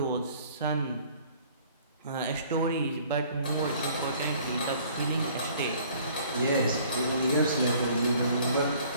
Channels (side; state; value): both; inverted; correlation -0.55